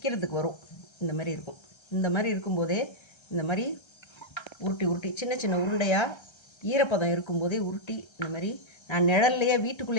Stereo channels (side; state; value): right; late; 1.3 ms